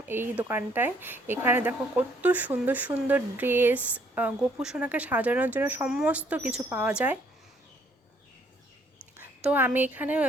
এই দোকানটায়। এখানে দেখো কত সুন্দর সুন্দর ড্রেস, গোপু সোনাকে সাজানোর জন্য সমস্ত কিছু পাওয়া যায়। তো আমি এখানে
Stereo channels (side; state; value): both; normal; correlation 0.65